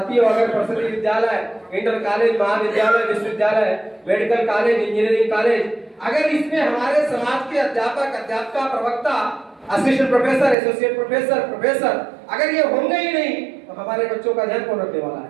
अगर प्रसिद्ध विद्यालय, इंटर कॉलेज, महाविद्यालय, विश्वविद्यालय, मेडिकल कॉलेज, इंजीनियरिंग कॉलेज, अगर इसमें हमारे समाज के अध्यापक, अध्यापिका, प्रवक्ता, असिस्टेंट प्रोफेसर, एसोसिएट प्रोफेसर अगर ये होंगे ही नहीं तो हमारे बच्चों का ध्यान कौन रखने वाला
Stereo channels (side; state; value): left; drops out; at 10.6 s